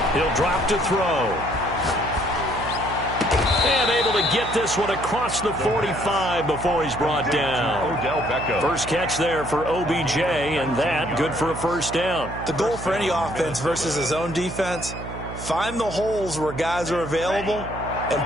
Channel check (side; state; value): right; noise; hum, 10 dB below the sound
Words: He'll drop to throw. And able to get this one across the 45 before he's brought down. First catch there for OBJ, and that good for a first down. The goal for any offense versus his own defense, find the holes where guys are available and